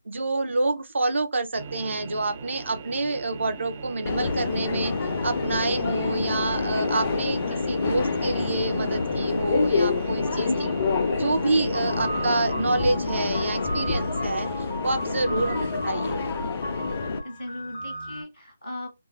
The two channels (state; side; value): inverted; both; correlation -0.80